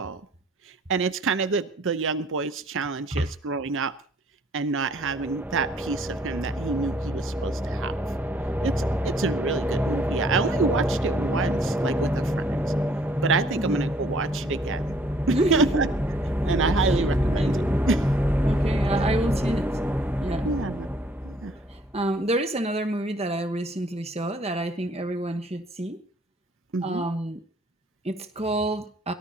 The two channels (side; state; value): both; normal; correlation 0.61